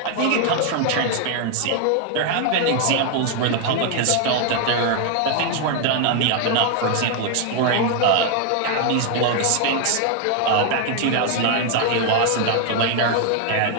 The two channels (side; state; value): both; different; correlation 0.00